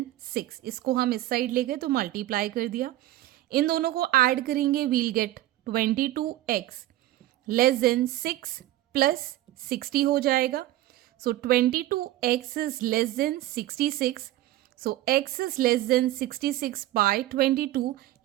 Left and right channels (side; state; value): left; quieter; 15.3 dB